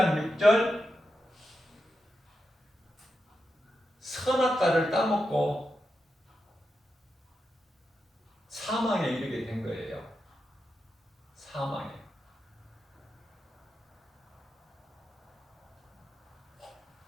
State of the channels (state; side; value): normal; both; correlation 0.87